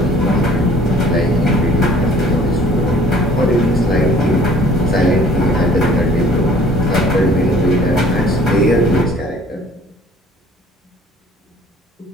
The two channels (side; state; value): both; normal; correlation 0.53